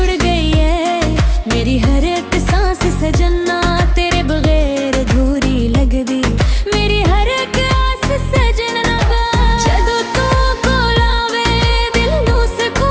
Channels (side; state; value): both; identical; correlation 1.00